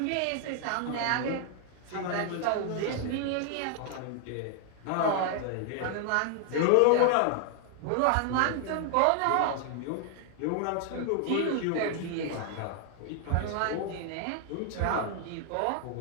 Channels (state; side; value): different; both; correlation 0.00